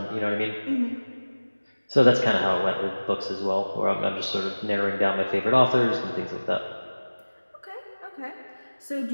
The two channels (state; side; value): inverted; both; correlation -1.00